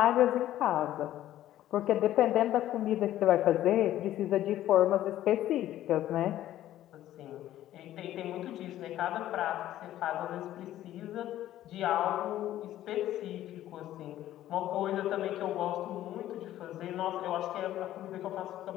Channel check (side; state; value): right; quieter; 13.2 dB